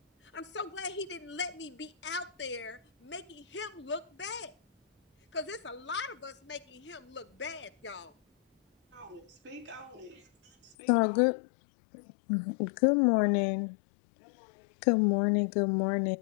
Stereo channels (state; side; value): drops out; right; at 10.8 s